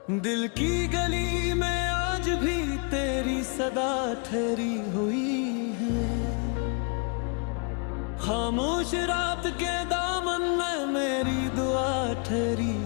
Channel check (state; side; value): quieter; right; 38.3 dB